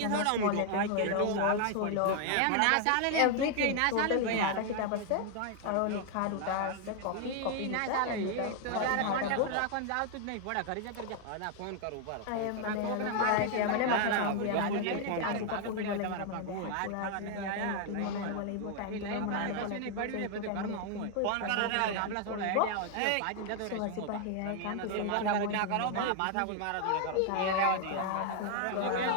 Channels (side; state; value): both; different; correlation 0.00